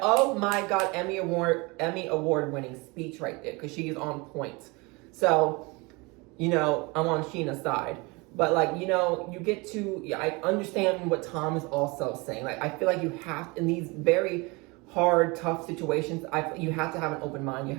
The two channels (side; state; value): left; quieter; 26.4 dB